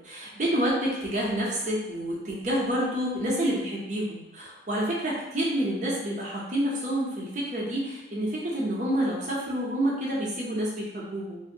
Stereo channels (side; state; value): both; normal; correlation 0.60